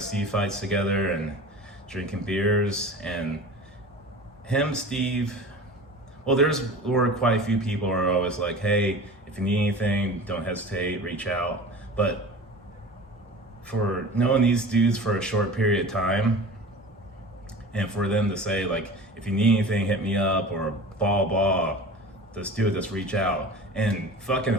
fights together and drinking beers. And him, Steve, well, were quite a few people who are always like, hey, if you need anything, don't hesitate, reach out. But for knowing these dudes for a short period of time, and for them to say like, if you need anything, hit me up, or blah, just do it, just reach out, and fucking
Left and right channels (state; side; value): normal; both; correlation 0.37